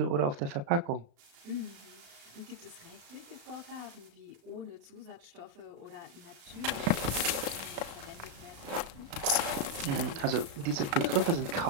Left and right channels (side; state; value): left; late; 35 ms